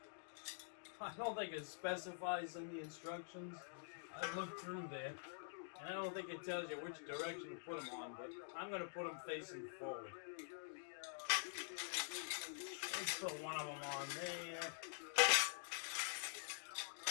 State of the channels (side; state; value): right; silent; digital silence